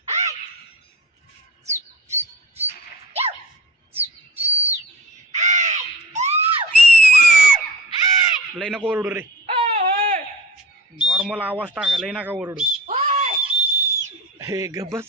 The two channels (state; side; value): normal; both; correlation 0.40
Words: लई नको ओरडू रे, नॉर्मल आवाज टाका, लई नका ओरडू. हे